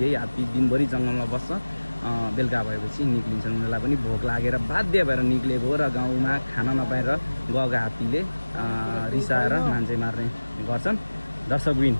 यही हात्ती दिनभरि जंगलमा बस्छ बेलुका भएपछि निक्लिन्छन् उनीहरूलाई पनि भोक लागेर बाध्य भएर निक्लेको र गाउँमा खाना नपाएर गएका हात्तीले रिसाएर मान्छे मार्ने गर्छन् दर्शकबिन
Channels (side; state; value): both; inverted; correlation -1.00